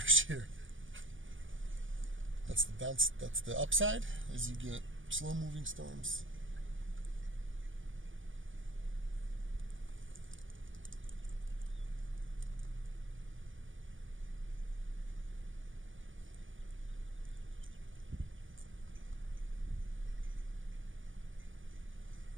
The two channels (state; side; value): late; left; 0.57 ms